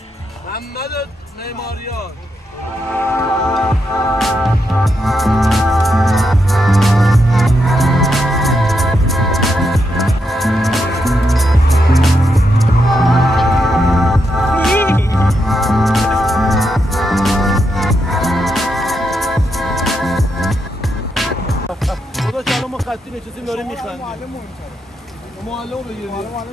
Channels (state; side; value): normal; both; correlation 0.82